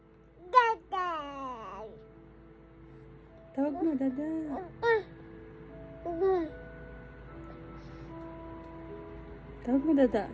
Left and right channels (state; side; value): identical; both; correlation 1.00